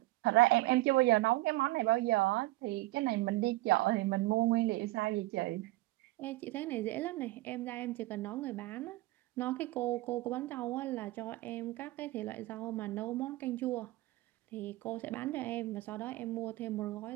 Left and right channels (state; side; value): quieter; left; 19.2 dB